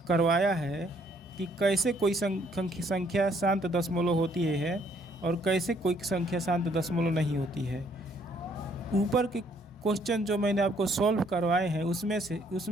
करवाया है कि कैसे कोई संख्या शांत दशमलव होती है और कैसे कोई संख्या शांत दशमलव नहीं होती है। ऊपर के क्वेश्चन जो मैंने आपको सॉल्व करवाए हैं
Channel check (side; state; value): both; normal; correlation 0.66